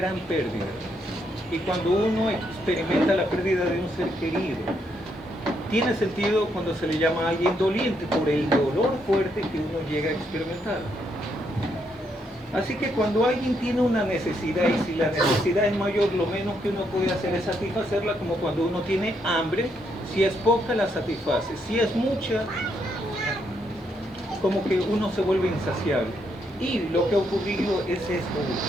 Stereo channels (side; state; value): both; normal; correlation 0.76